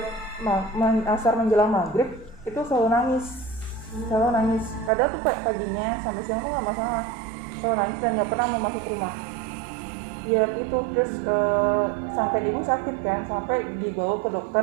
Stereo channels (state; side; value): drops out; left; at 4.9 s